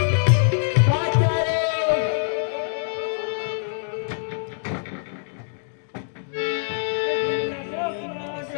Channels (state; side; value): silent; right; digital silence